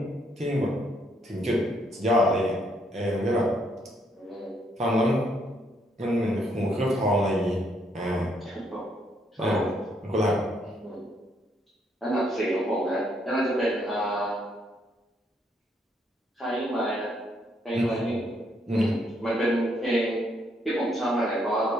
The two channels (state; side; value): normal; both; correlation 0.72